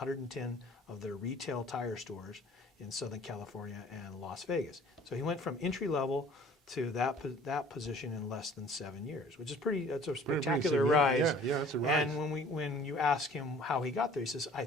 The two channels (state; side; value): normal; both; correlation 0.51